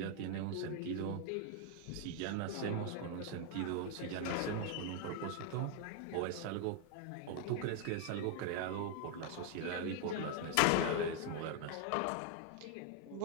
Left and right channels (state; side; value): different; both; correlation 0.00